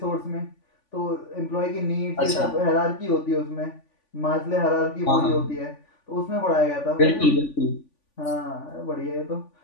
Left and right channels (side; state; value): right; late; 3.5 ms